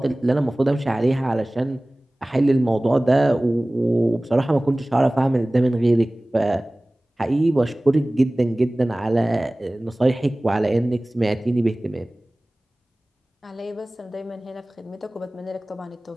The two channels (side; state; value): both; normal; correlation 0.98